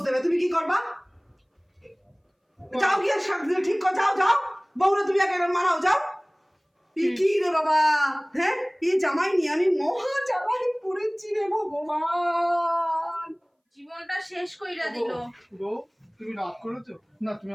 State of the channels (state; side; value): identical; both; correlation 1.00